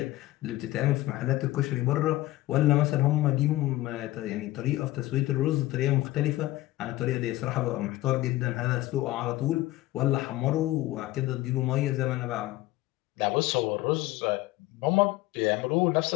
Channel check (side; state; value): right; quieter; 17.2 dB